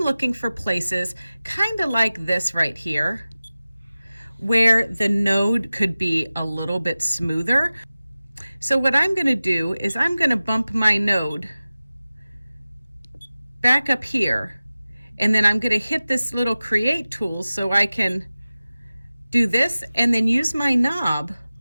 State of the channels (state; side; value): inverted; both; correlation -0.97